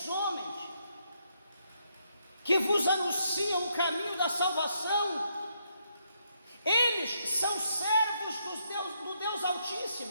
homens que vos anunciam o caminho da salvação, eles são servos do Deus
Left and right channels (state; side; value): inverted; both; correlation -0.76